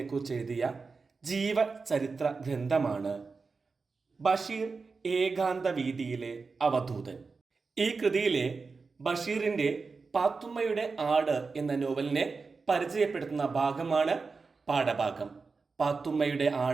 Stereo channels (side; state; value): left; quieter; 4.5 dB